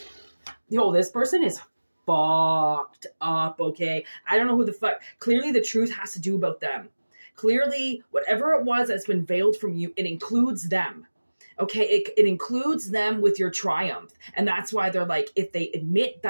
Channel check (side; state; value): both; inverted; correlation -1.00